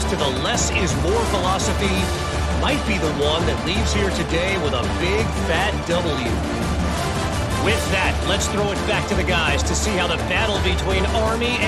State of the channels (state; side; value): identical; both; correlation 1.00